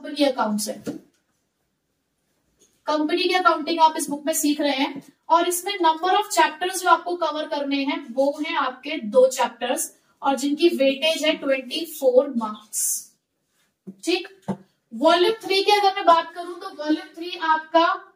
अकाउंट्स है। कंपनी की अकाउंटिंग आप इस बुक में सीख रहे हैं और इसमें नंबर ऑफ चैप्टर्स जो आपको कवर करने हैं वो हैं आपके 2 चैप्टर्स और जिनकी वेटेज है 24 मार्क्स। ठीक, वॉल्यूम 3 की अगर मैं बात करूं तो वॉल्यूम 3 आपका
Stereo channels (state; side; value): identical; both; correlation 1.00